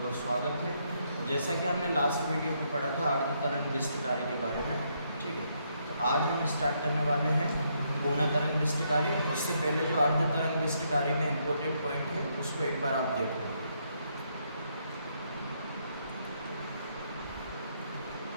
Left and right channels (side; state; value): both; inverted; correlation -0.75